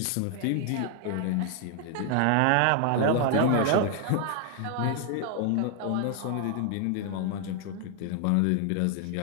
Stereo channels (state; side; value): different; both; correlation 0.00